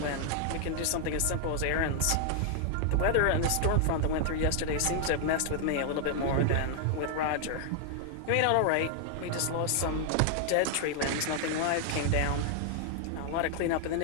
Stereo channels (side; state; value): both; different; correlation 0.00